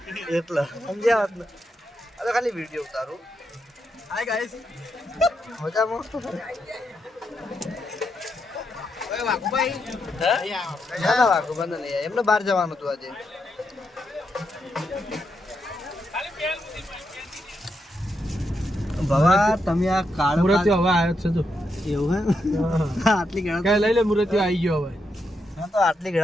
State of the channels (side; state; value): both; normal; correlation 0.83